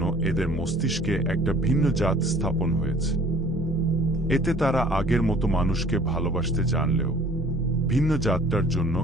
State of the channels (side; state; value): both; normal; correlation 0.53